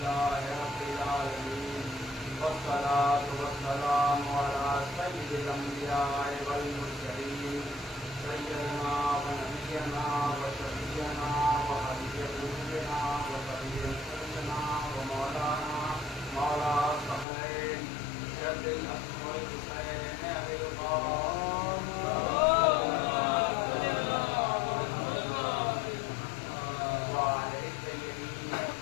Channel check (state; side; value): drops out; right; at 17.2 s